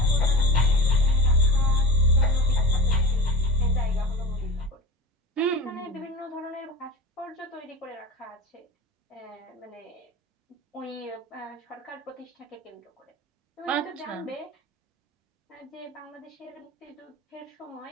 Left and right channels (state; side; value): normal; both; correlation 0.31